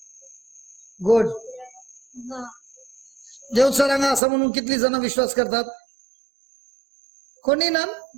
गुड. देवसा रंग असा म्हणून कितली जण विश्वास करतात? कोणी ना.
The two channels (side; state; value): left; drops out; at 4.2 s